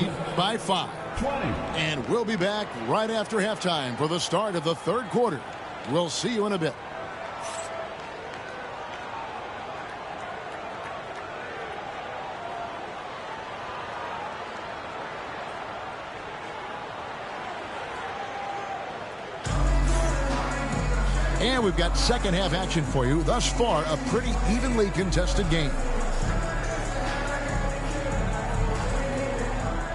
by 5. And we'll be back right after halftime for the start of the third quarter. We'll see you in a bit. And we've got second half action for you. Thus far, a pretty evenly contested game.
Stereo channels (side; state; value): both; identical; correlation 1.00